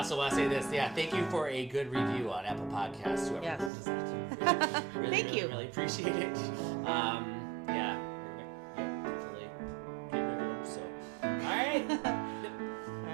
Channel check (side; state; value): left; drops out; at 3.7 s